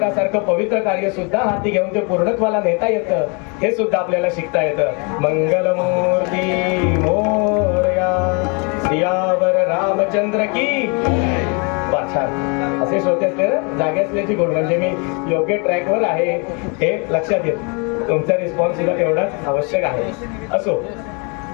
पवित्र कार्य सुद्धा हाती घेऊन ते पूर्णत्वाला नेता येतं. हे सुद्धा आपल्याला शिकता येतं. मंगलमूर्ती मोरया, सियावर रामचंद्र की. छान. असे श्रोते असले जागे असल्याची गोड, म्हणजे मी योग्य ट्रॅकवर आहे हे लक्षात येत. तुमचा रिस्पॉन्स सुद्धा तेवढाच आवश्यक आहे. असो,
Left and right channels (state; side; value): quieter; right; 33.7 dB